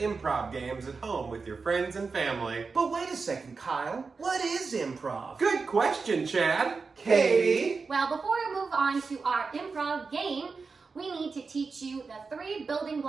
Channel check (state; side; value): quieter; left; 4.6 dB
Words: games at home with your friends and family. But wait a second, Kyle. What is improv? Good question, Chad. Katie? Well, before we move on to our improv game, we need to teach you the 3 building